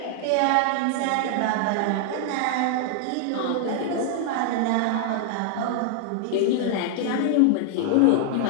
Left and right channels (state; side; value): different; both; correlation -0.01